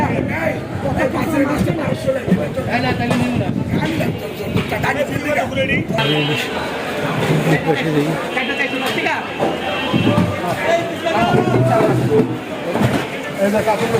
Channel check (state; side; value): identical; both; correlation 1.00